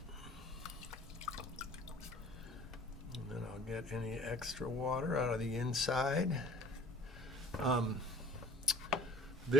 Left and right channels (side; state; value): both; normal; correlation 0.47